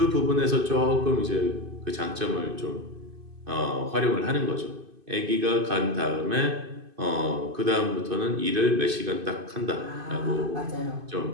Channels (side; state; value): left; late; 2.5 ms